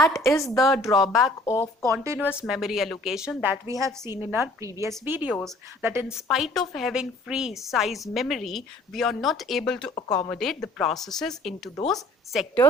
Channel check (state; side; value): normal; both; correlation 0.54